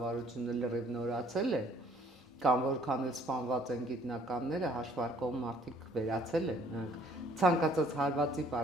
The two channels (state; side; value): normal; both; correlation 0.60